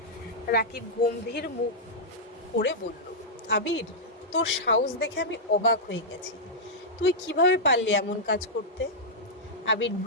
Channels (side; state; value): both; normal; correlation -0.08